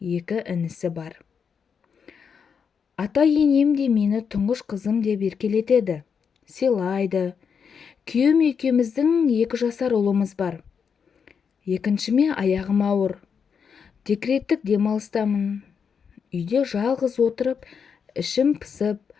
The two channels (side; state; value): right; quieter; 6.5 dB